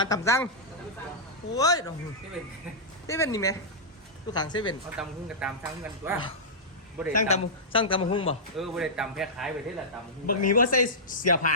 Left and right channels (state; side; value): normal; both; correlation -0.13